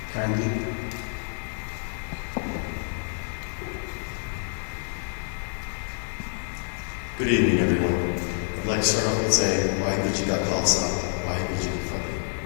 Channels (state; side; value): silent; right; digital silence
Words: Karandeep. Good evening, everyone. I'd like to start off with saying Waheguru Ji Ka Khalsa, Waheguru Ji Ki Fateh,